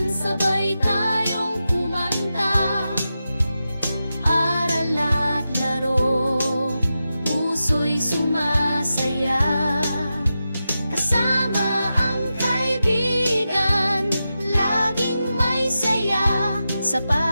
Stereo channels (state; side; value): inverted; both; correlation -0.91